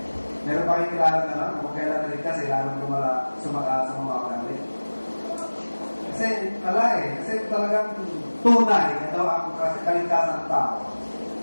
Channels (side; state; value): both; inverted; correlation -1.00